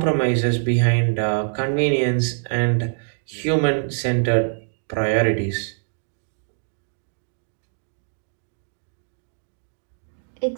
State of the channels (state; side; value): silent; left; digital silence